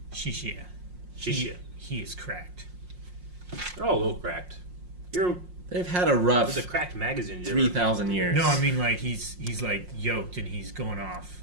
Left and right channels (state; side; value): late; left; 5.6 ms